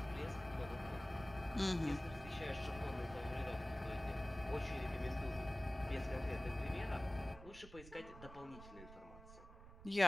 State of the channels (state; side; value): noise; right; rumble, 15 dB below the sound